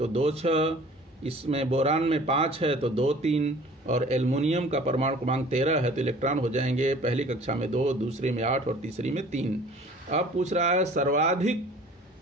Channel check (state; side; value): normal; both; correlation 0.48